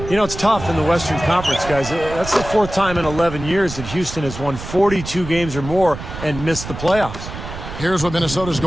you know, it's tough in the Western Conference, guys. That's the 4th time in 11 years that Houston has won 42 games or more and missed the playoffs. Here's what Minnesota's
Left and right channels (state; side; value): noise; right; rumble, 10 dB below the sound